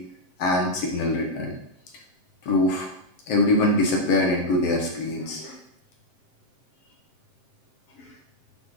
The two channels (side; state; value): right; late; 7.6 ms